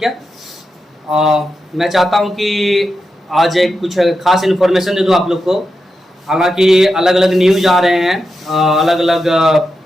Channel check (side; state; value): both; normal; correlation 0.88